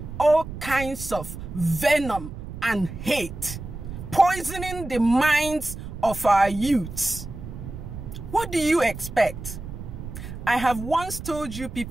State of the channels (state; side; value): noise; right; rumble, 10 dB below the sound